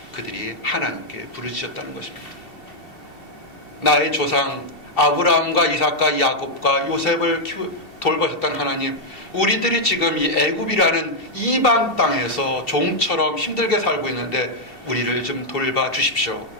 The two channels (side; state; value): right; late; 2.7 ms